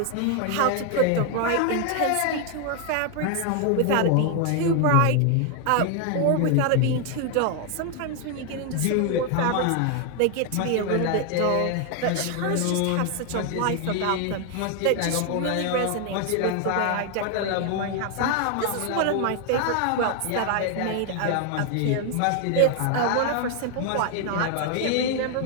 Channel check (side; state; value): both; different; correlation 0.00